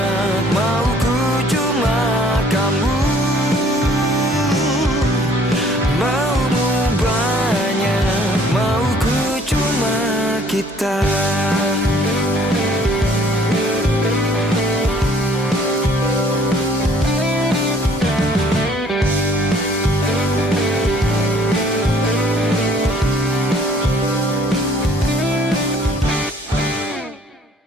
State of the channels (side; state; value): both; normal; correlation 0.58